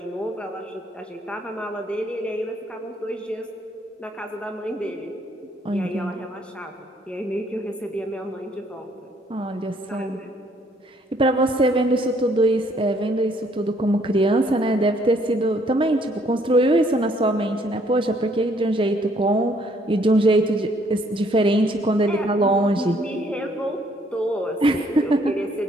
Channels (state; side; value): normal; both; correlation 0.65